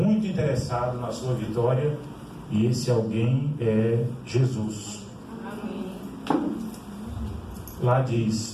interessado na sua vitória, e esse alguém é Jesus. Lá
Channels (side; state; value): both; identical; correlation 1.00